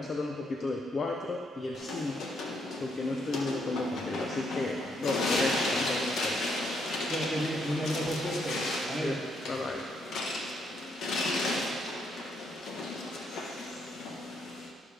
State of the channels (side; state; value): both; normal; correlation 0.75